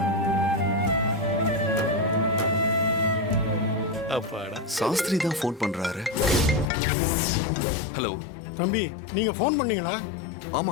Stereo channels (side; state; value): right; drops out; at 6.7 s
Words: அப்பாடா. சாஸ்திரி தான் ஃபோன் பண்றாரு. ஹலோ தம்பி, நீங்க ஃபோன் பண்ணீங்களா?